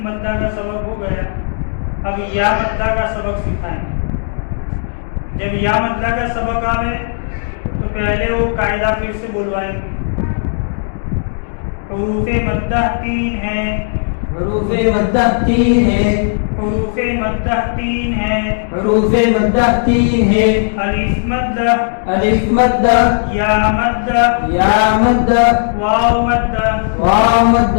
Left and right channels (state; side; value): silent; right; digital silence